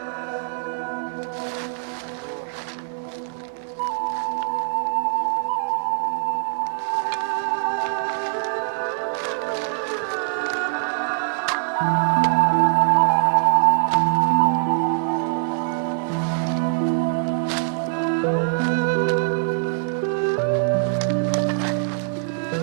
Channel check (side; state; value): left; silent; 58 dB below the other